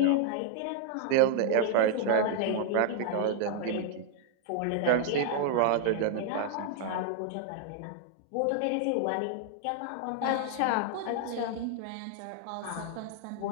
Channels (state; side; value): different; both; correlation 0.00